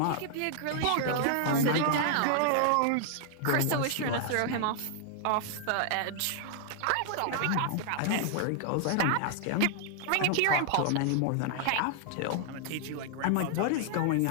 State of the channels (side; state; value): both; different; correlation -0.01